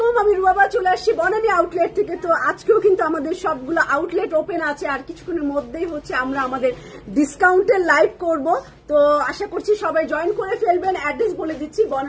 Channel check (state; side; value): identical; both; correlation 1.00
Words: আমি রুবাবা চলে আসছি বনানী আউটলেট থেকে। তো আজকেও কিন্তু আমাদের সবগুলো আউটলেট ওপেন আছে, আর কিছুক্ষণের মধ্যেই হচ্ছে আমরা আমাদের ডিসকাউন্টের লাইভ করব। তো আশা করছি সবাই জয়েন করে ফেলবেন। অ্যাড্রেস বলে দিচ্ছি,